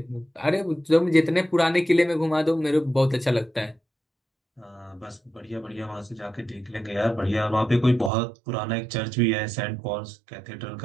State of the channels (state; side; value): drops out; left; at 8.1 s